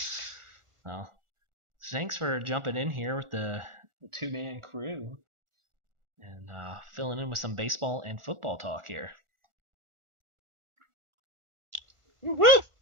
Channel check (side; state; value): left; late; 1.4 ms